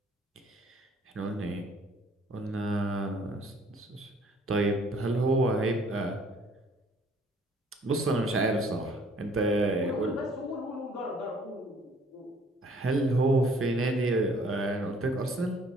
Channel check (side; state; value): both; normal; correlation 0.58